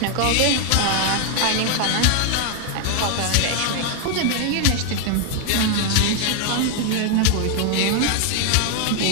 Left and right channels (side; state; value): both; different; correlation 0.00